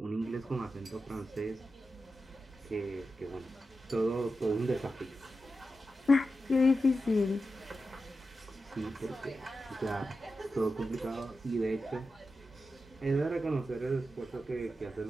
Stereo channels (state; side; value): normal; both; correlation 0.90